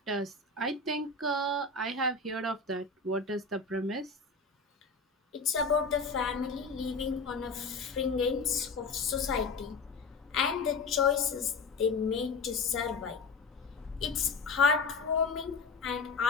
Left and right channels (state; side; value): quieter; right; 4.1 dB